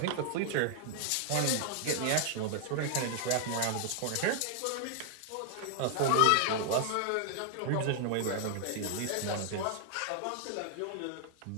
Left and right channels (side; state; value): both; different; correlation 0.00